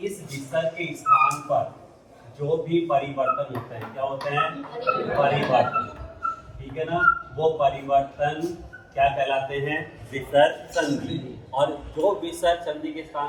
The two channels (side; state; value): both; identical; correlation 1.00